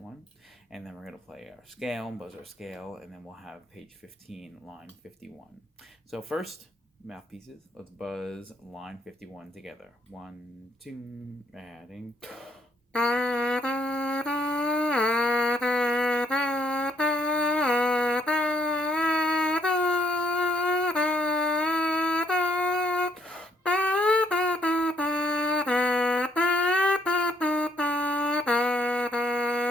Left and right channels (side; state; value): both; normal; correlation 0.69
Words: one. And then we're going to play our scale, buzz our scale, and then we'll have page 15, line 51. So first, mouthpieces. Let's buzz line 51 together. 1, 2, adding.